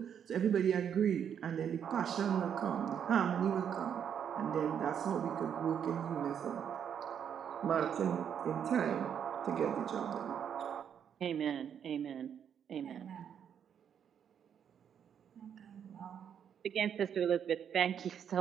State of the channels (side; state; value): left; quieter; 8.4 dB